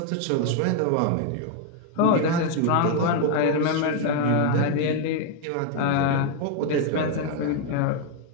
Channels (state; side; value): different; both; correlation 0.00